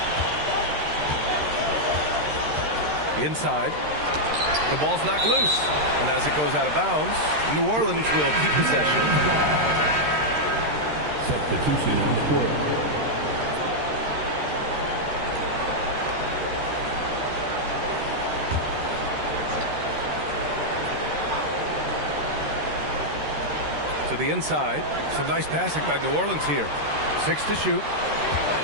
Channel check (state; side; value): late; left; 13 ms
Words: Inside. The ball's knocked loose. And as it goes out of bounds, New Orleans will keep possession. Substitution on the court. To the inside. Some nice passing by New Orleans here. 6 to shoot.